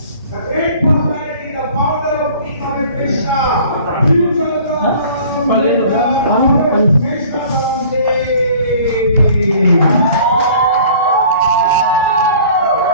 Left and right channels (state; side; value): inverted; both; correlation -0.49